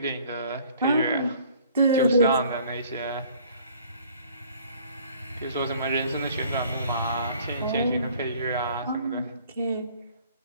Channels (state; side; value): inverted; both; correlation -0.54